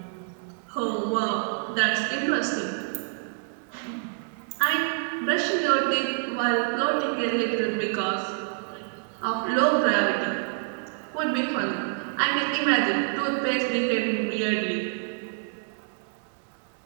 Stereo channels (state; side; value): silent; left; 60 dB below the other